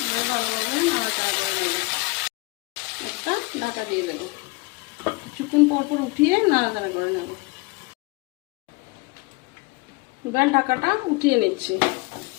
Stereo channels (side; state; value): right; quieter; 25.4 dB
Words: এবার ভালোভাবে নাড়াচাড়া করে নেব। একটা ঢাকা দিয়ে দেবো। কিছুক্ষণ পর উঠিয়ে নাড়াচাড়া করে নেব। এবার ঢাকাটা উঠিয়ে নিচ্ছি।